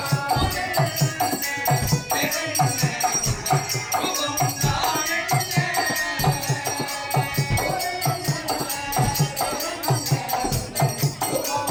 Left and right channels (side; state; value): both; identical; correlation 1.00